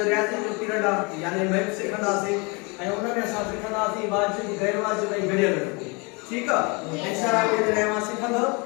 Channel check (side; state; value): right; quieter; 29.9 dB